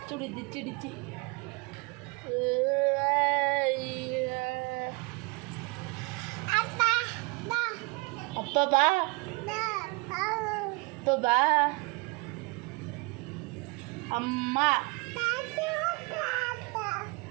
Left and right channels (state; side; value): quieter; left; 28.4 dB